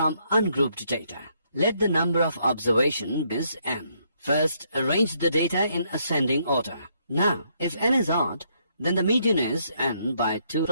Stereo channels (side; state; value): both; inverted; correlation -0.72